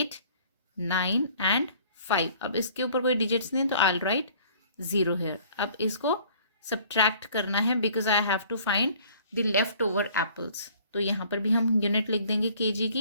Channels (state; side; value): inverted; both; correlation -0.54